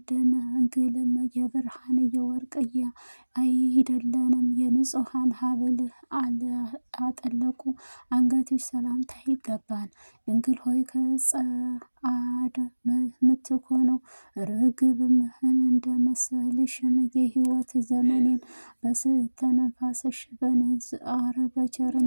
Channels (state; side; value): inverted; both; correlation -1.00